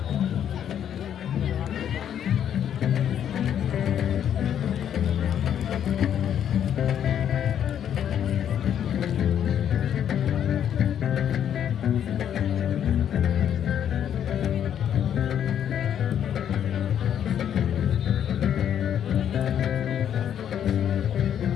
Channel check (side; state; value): right; quieter; 9.5 dB